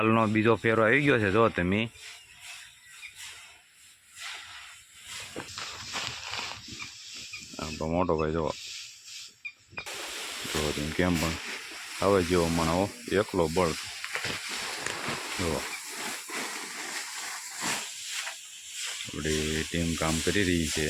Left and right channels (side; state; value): both; identical; correlation 1.00